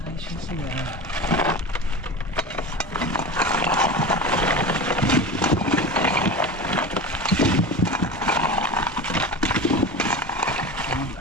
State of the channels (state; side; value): normal; both; correlation 0.29